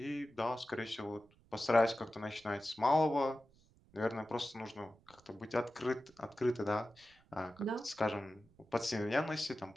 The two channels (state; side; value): noise; right; rumble, 29 dB below the sound